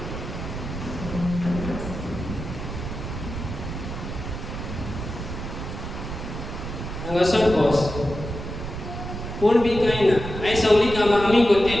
हांगासर बस. कोण बी कांय ना. आयज सगळीं कामां आमी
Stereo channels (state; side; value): noise; right; rumble, 7 dB below the sound